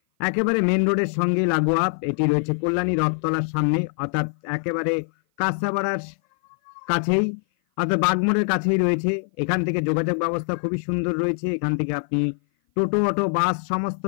একেবারে মেন রোডের সঙ্গেই লাগোয়া। এটি রয়েছে কল্যাণী রথতলার সামনে, অর্থাৎ একেবারে কাঁচাপাড়ার কাছেই, অর্থাৎ বাগমোড়ের কাছেই রয়েছে। এখান থেকে যোগাযোগ ব্যবস্থা খুবই সুন্দর রয়েছে। এখান থেকে আপনি টোটো, অটো, বাস সমস্ত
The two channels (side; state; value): right; silent; 56 dB below the other